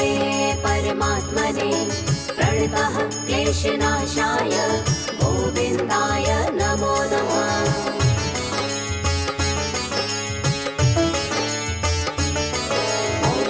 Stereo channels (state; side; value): identical; both; correlation 1.00